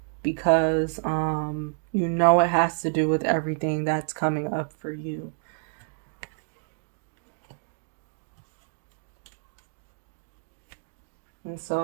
because you know it has to do with everything that's coming up for you. And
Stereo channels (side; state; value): left; silent; digital silence